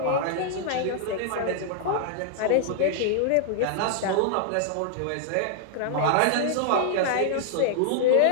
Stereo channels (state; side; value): different; both; correlation -0.01